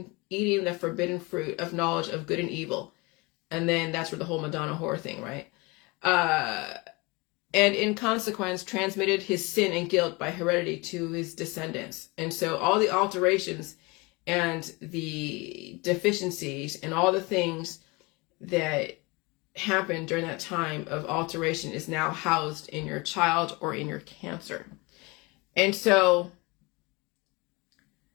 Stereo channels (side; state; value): right; quieter; 25.9 dB